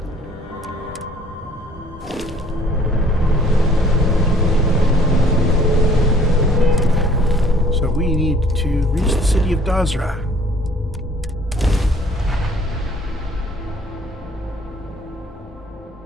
So we need to reach the city of Dazra.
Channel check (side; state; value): both; normal; correlation 0.57